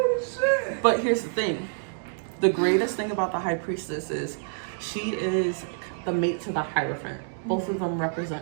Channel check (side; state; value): left; silent; digital silence